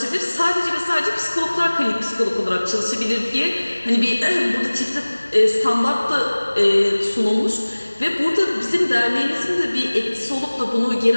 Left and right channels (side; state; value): both; inverted; correlation -1.00